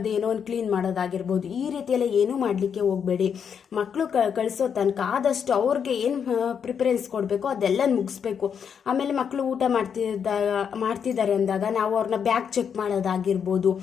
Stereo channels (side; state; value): right; quieter; 7.3 dB